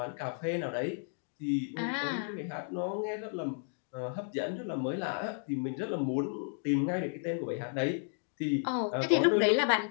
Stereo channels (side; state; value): right; silent; 56 dB below the other